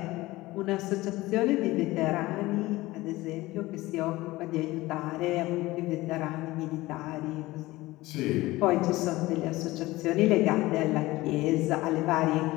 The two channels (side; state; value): right; quieter; 19.1 dB